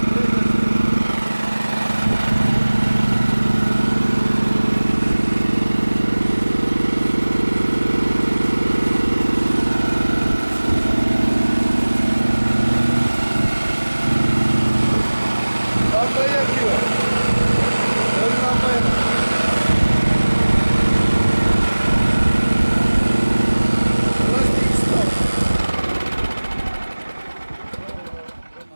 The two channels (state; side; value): inverted; both; correlation -1.00